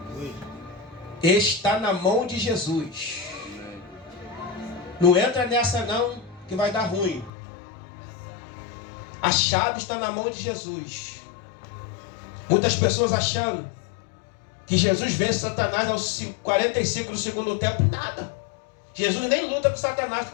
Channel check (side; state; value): right; drops out; at 7.3 s